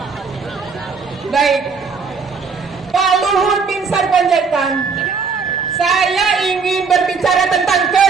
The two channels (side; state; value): left; quieter; 5.2 dB